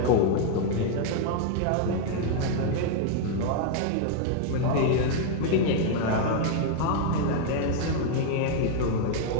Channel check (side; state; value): both; different; correlation 0.00